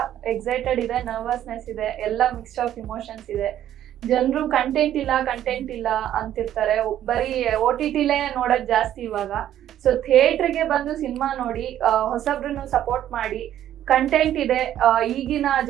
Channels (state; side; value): quieter; left; 11.6 dB